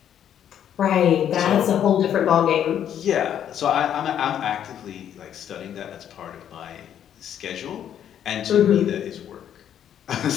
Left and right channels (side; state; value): right; quieter; 9.7 dB